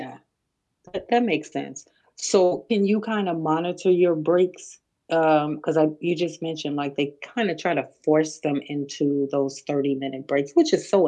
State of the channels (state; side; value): identical; both; correlation 1.00